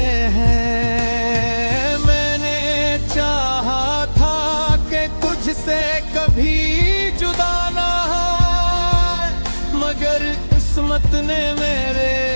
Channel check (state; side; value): inverted; both; correlation -1.00